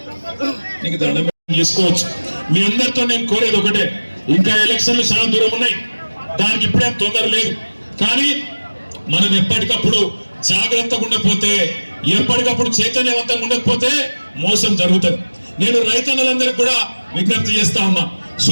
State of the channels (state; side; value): inverted; both; correlation -1.00